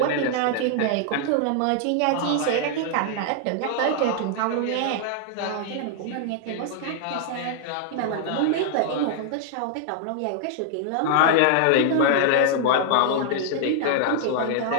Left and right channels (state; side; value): different; both; correlation -0.01